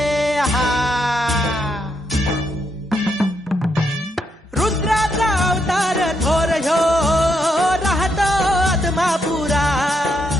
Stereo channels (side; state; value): both; normal; correlation 0.78